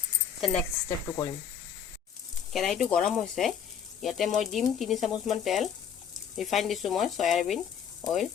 নেক্সট ষ্টেপটো কৰিম। কেৰাহীটো গৰম হৈছে। ইয়াতে মই দিম 3 চামুচমান তেল। ৰিফাইন দিছোঁ মই সয়াবিন অইল।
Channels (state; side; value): quieter; right; 8.2 dB